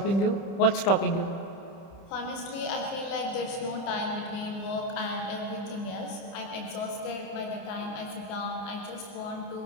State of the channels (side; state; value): right; late; 30 ms